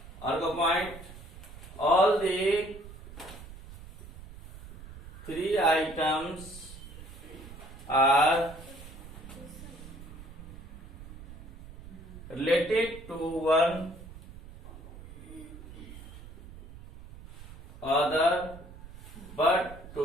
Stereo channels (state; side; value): noise; right; rumble, 15 dB below the sound